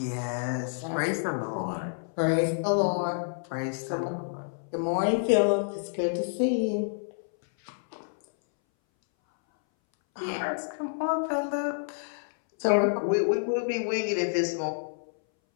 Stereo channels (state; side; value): silent; right; 59 dB below the other